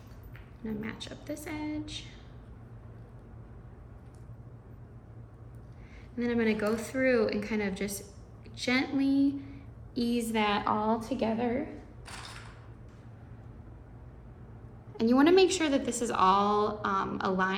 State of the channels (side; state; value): both; identical; correlation 1.00